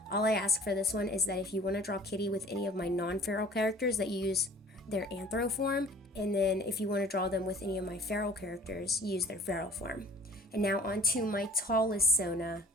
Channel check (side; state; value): both; normal; correlation 0.50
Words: All I ask for this one is that if you want to draw Kitty with any of my non-feral characters, that you use their anthro form, and then if you want to draw them with any of my feral characters, use their feral form. And now on to my tallest Sona,